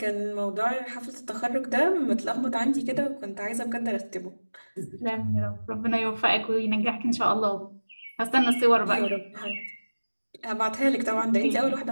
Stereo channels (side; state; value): both; inverted; correlation -1.00